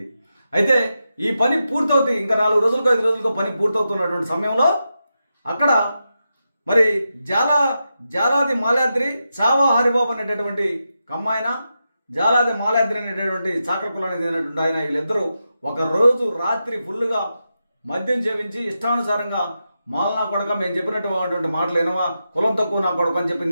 అయితే ఈ పని పూర్తవుతుంది, ఇంకా 4 రోజులకు 5 రోజులకు పని పూర్తవుతున్నటువంటి సమయంలో అక్కడ మరి జాలాది మాల్యాద్రి చావా హరిబాబు అనేటటువంటి కమ్మాయన, జాలాది మాల్యాద్రి అనేటటువంటి చాకర కులానికి చెందినటువంటి ఆయన, వీళ్ళిద్దరూ ఒక రోజు రాత్రి ఫుల్గా మద్యం సేవించి ఇష్టానుసారంగా మాలనా కొడక మేము చెప్పినటువంటి మాటలు ఏనవా, కులం తక్కువ నా కొడక అని చెప్పి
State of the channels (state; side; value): inverted; both; correlation -0.88